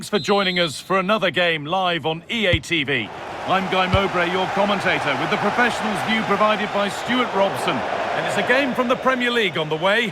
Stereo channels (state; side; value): identical; both; correlation 1.00